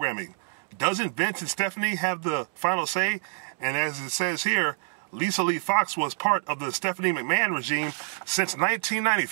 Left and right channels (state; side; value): silent; left; digital silence